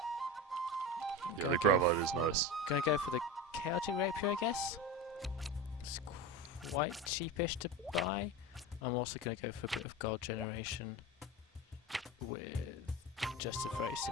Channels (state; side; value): normal; both; correlation 0.24